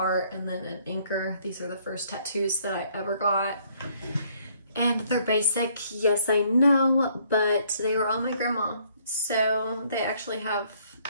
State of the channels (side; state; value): both; inverted; correlation -0.65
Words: and then an anchor. These are the first tattoos that I ever got. And they're basic, yes I know, but they were on my grandma. So they actually have